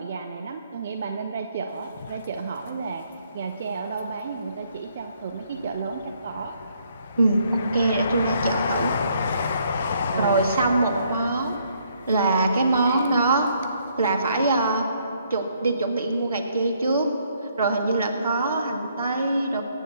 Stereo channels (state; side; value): inverted; both; correlation -0.69